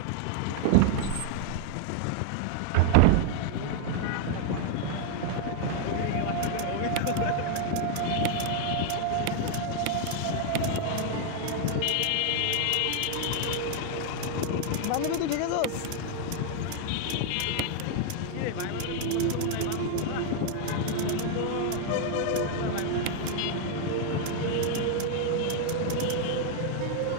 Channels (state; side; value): different; both; correlation 0.00